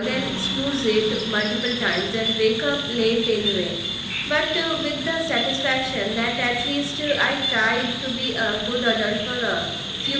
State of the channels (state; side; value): identical; both; correlation 1.00